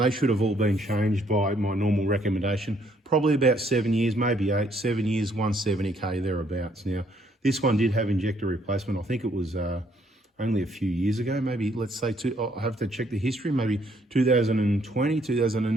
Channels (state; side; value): normal; both; correlation 0.68